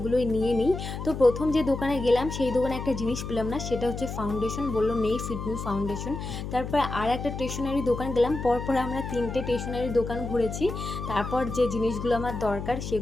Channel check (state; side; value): noise; left; hum, 6 dB below the sound